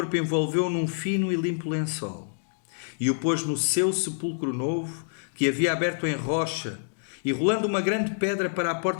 envolveu-o num fino e limpo lençol, e o pôs no seu sepulcro novo, que havia aberto em rocha, e rolando uma grande pedra para a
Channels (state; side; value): silent; right; digital silence